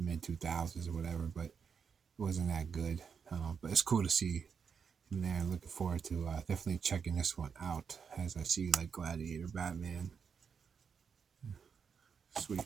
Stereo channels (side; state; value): left; quieter; 6.3 dB